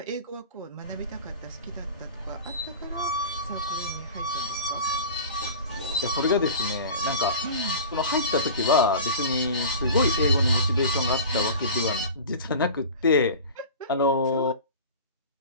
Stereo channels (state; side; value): inverted; both; correlation -0.36